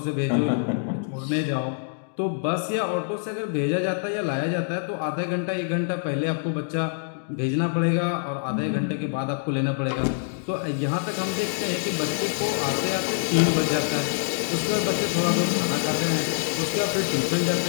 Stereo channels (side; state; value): right; silent; digital silence